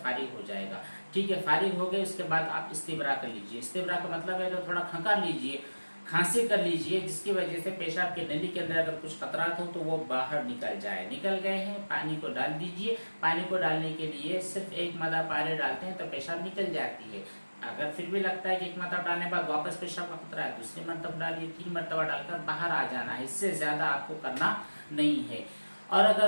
फारिग हो जाएगा। ठीक है, फारिग हो गए, उसके बाद आप इस्तिब्रा कर लीजिए। इस्तिब्रा का मतलब है तो थोड़ा खंकार लीजिए, खांसी कर लीजिए, जिसकी वजह से पेशाब के नली के अंदर अगर कुछ खतरात हो तो वो बाहर निकल जाए। निकल गए हैं, पानी को डाल दीजिए। पानी को डालने के लिए सिर्फ 1 मदद पानी डालते हैं तो पेशाब निकल जाती है। अगर फिर भी लगता है कि 1 मरतबा डालने के बाद वापस पेशाब का खतरा है, दूसरी मरतबा डालिए, 3 मरतबा डालकर बाहर आ जाना है। इससे ज्यादा आपको करना नहीं है। और अगर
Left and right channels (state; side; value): inverted; both; correlation -1.00